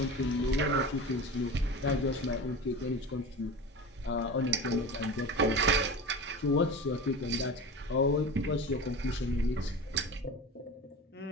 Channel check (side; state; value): both; normal; correlation 0.31